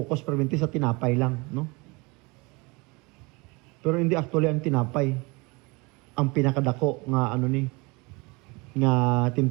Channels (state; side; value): quieter; left; 26.6 dB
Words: permanente sa tinapay lang, no? Pero hindi actually ang tinapay ang pinakadako nga nga